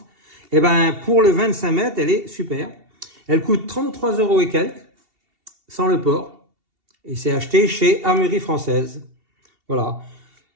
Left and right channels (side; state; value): left; late; 2.7 ms